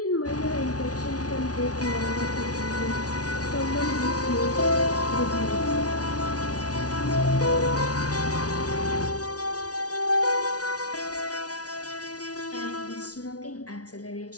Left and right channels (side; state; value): right; late; 0.68 ms